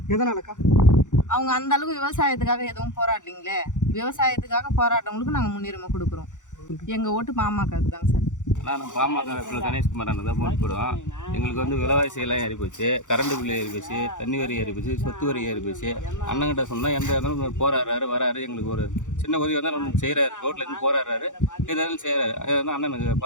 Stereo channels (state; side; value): late; right; 0.86 ms